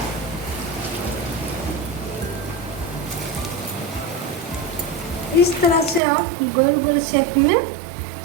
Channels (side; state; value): left; drops out; at 6.0 s